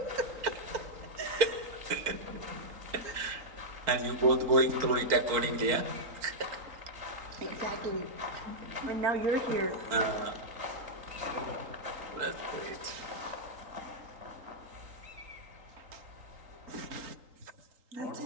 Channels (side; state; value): left; late; 3.8 ms